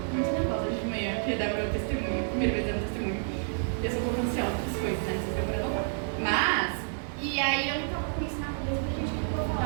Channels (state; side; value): silent; left; 58 dB below the other